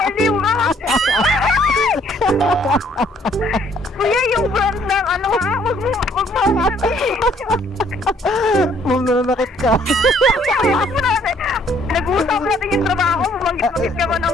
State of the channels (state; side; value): normal; both; correlation 0.63